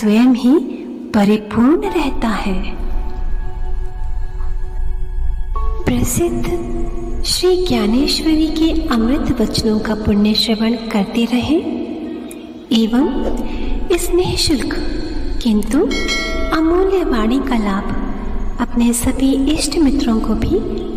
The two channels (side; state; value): both; identical; correlation 1.00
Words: ही परिपूर्ण रहता है। प्रसिद्ध श्री ज्ञानेश्वरी के अमृत वचनों का पुण्य श्रवण करते रहें एवं इस निःशुल्क किंतु अमूल्य वाणी का लाभ अपने सभी इष्ट मित्रों को भी